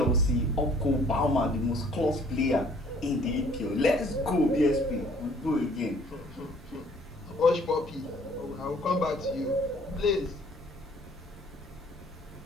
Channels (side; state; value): both; normal; correlation 0.58